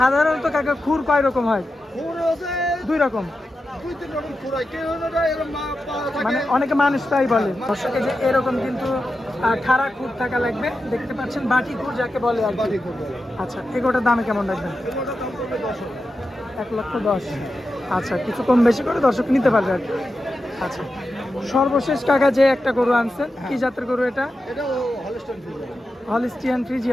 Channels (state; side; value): normal; both; correlation 0.90